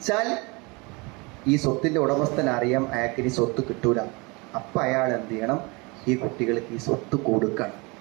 ഈ സ്വത്തിൻ്റെ ഉടമസ്ഥൻ അറിയാം അയാൾക്ക് ഇനി സ്വത്ത് കിട്ടൂല. അപ്പം അയാൾ എന്ത് ചെയ്യണം, ഈ കുട്ടികൾക്ക് ഈ സ്വത്ത് കൊടുക്കണം.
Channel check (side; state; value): left; quieter; 27.6 dB